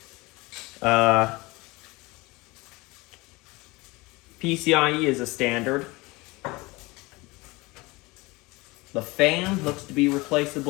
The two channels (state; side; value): quieter; right; 23.1 dB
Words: PCIe is a standard. The fan looks to be